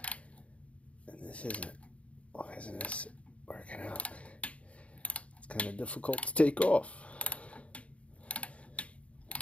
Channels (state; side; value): late; right; 0.063 ms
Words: And this isn't, why isn't this working out? Kind of difficult to take off.